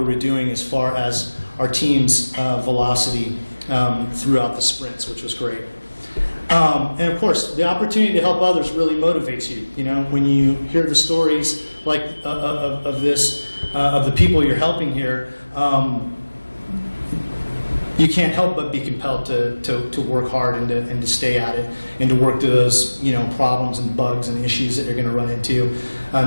were doing as far as our team's velocity throughout the sprints, which was great. And of course, the opportunity to help others really motivates you. You know, when you hear the stories like of this, of the people you're helping here, you can't help but be compelled to work hard and to stay at it and to work through those, you know, problems and bugs and issues that you're going to run into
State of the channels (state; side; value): inverted; both; correlation -1.00